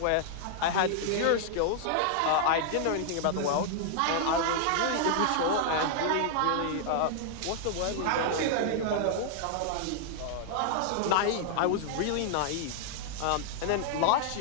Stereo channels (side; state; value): both; different; correlation -0.01